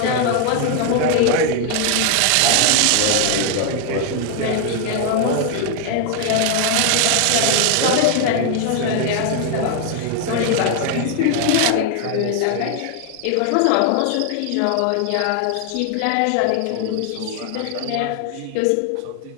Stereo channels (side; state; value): both; different; correlation 0.00